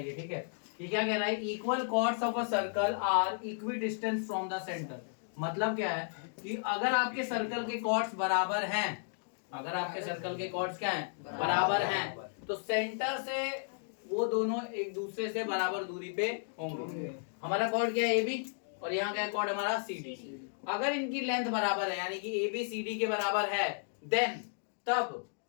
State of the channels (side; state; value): right; silent; digital silence